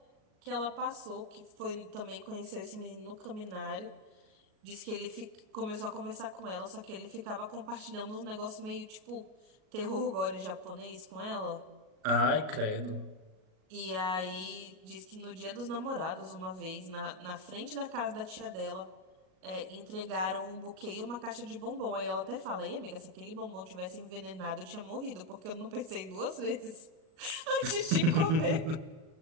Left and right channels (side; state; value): left; late; 38 ms